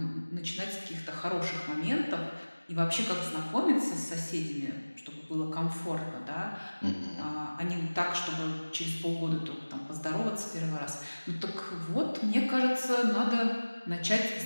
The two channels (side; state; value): both; inverted; correlation -1.00